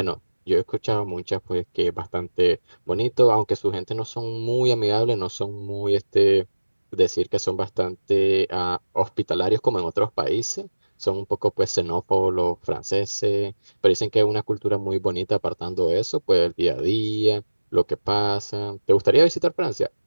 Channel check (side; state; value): both; inverted; correlation -1.00